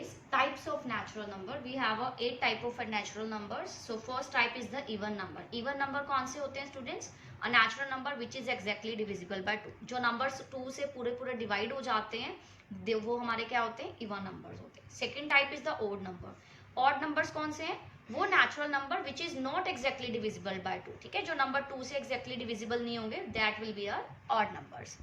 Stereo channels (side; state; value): both; identical; correlation 1.00